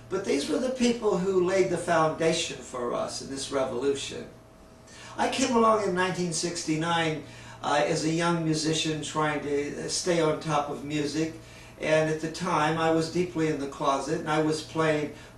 But these were the people who laid the foundation for us in this revolution. I came along in 1969 as a young musician trying to stay on top of music, and at the time I was deeply in the closet and I was playing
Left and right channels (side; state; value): both; identical; correlation 1.00